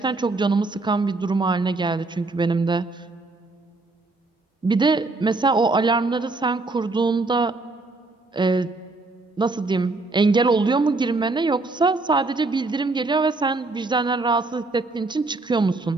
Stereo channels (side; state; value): left; quieter; 3.4 dB